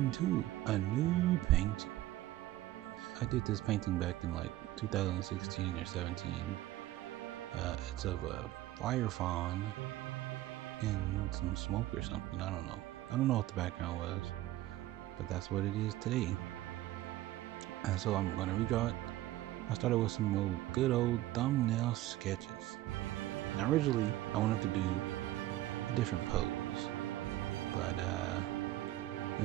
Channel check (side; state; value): left; quieter; 15.3 dB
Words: a new painting. I did this painting back in like 2016 or 17. It's of a fire fawn and some smoke or something. I don't know what the background was, but that's what it is today. And so I'm gonna redraw it. I started with some good old thumbnail sketches. Now originally I wanted to do a different pose, but